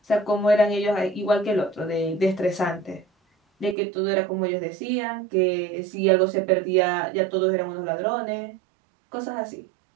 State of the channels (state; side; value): drops out; left; at 3.8 s